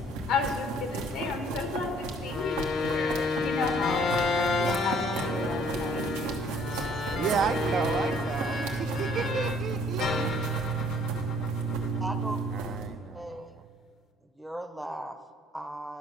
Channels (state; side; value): normal; both; correlation 0.59